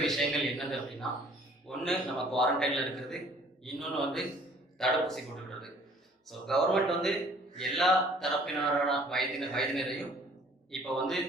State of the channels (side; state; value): both; normal; correlation 0.55